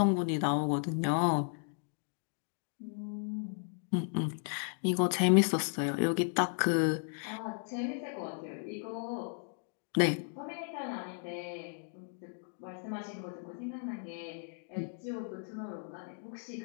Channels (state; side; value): silent; right; 54 dB below the other